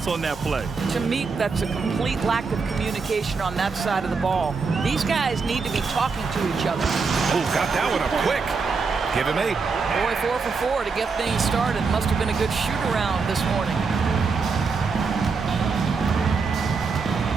on that play? To me, that's a complete lack of communication on that side of the ball. These guys need to be talking to each other. Oh, got that one up quick. Give him 8. Boy, 4 for 4 to get things started. Must have been a good shoot-around this morning.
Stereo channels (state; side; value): quieter; left; 4.8 dB